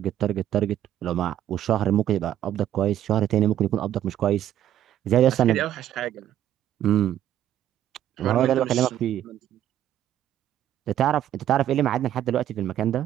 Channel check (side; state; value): left; quieter; 11.4 dB